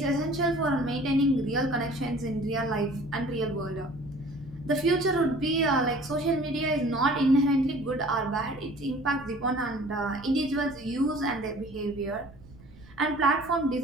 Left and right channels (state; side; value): noise; right; rumble, 22 dB below the sound